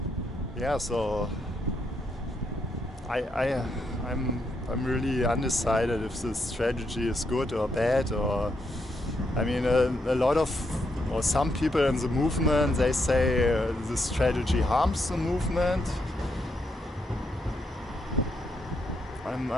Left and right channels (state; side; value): normal; both; correlation 0.79